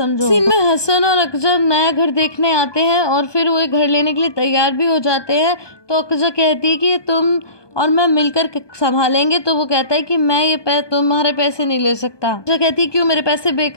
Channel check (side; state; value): right; late; 1.2 ms